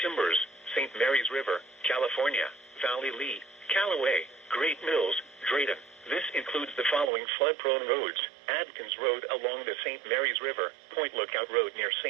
St. Mary's River, California, Valley Lee, Callaway, Great Mills, Drayton. This includes the following flood-prone roads: Adkins Road along the St. Mary's River, Point Lookout Road near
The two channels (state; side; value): drops out; left; at 7.1 s